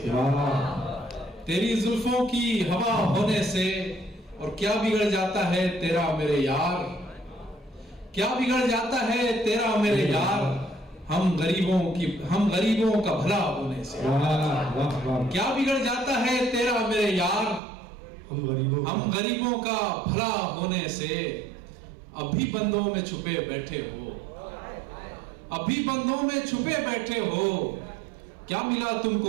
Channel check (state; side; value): drops out; left; at 17.6 s